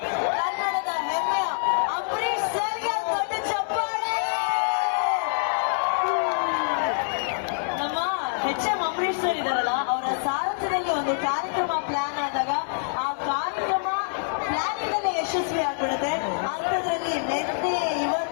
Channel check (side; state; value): right; silent; digital silence